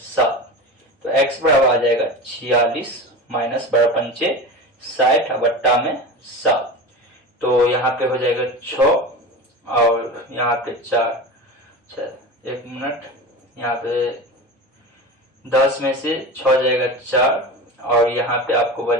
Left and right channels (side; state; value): both; normal; correlation 0.29